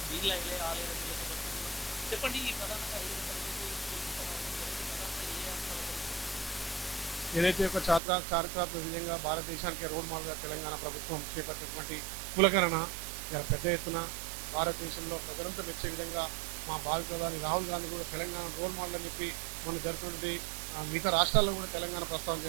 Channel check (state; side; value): drops out; left; at 8.0 s